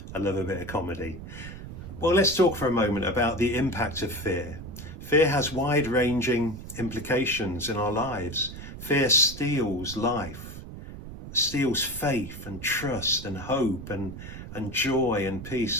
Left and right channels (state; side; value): noise; right; rumble, 11 dB below the sound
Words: I love a bit of comedy. Well, let's talk for a moment about the impact of fear. Fear has wide-ranging implications in our lives. Fear steals life, steals faith and trust and hope and joy and